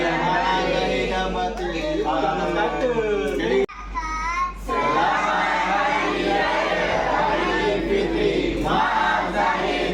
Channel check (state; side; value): identical; both; correlation 1.00